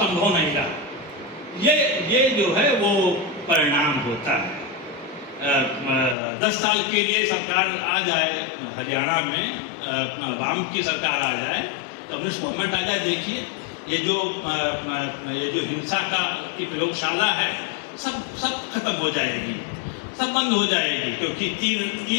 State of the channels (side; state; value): right; drops out; at 6.2 s